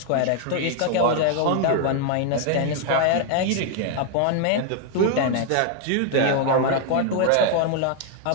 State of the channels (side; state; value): both; different; correlation 0.00